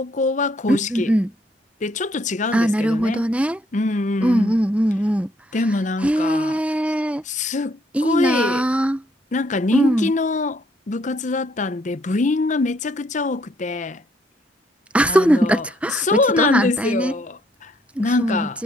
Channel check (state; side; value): normal; both; correlation 0.69